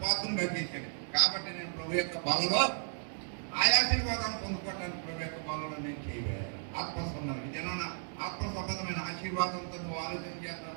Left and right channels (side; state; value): left; silent; digital silence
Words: పాత్రగా చేశాడు. కాబట్టి నేను ప్రభు యొక్క బలలో ఆ ఆశీర్వాదాన్ని పొందుకోవడానికి ప్రభు యొక్క బలలో నేను చేయలేదు. ఆత్మ సంబంధం జనాన ఆత్మ సంబంధమైన ఆశీర్వాదంతో నువ్వు ఆలోచన చేస్తావు.